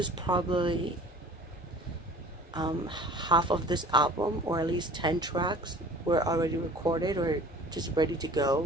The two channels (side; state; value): both; normal; correlation 0.46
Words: probably half of this album, or at least 10 tracks were already recorded or just ready to